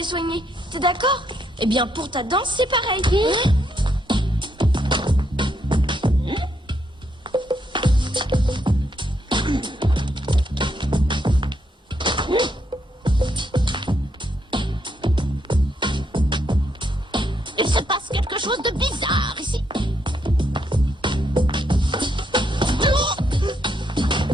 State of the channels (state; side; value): normal; both; correlation 0.76